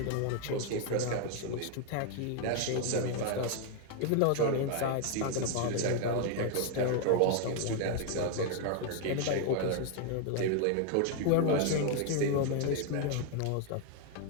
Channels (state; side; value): different; both; correlation 0.00